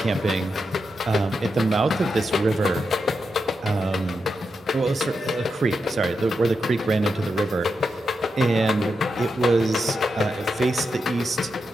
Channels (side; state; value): both; normal; correlation 0.86